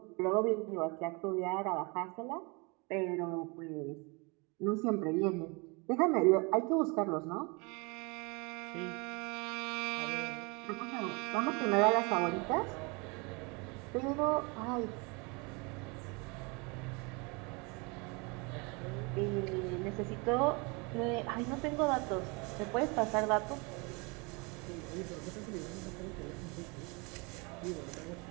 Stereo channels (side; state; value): left; quieter; 29.4 dB